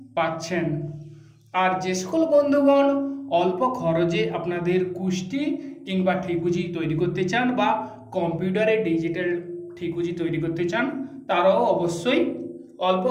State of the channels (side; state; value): both; identical; correlation 1.00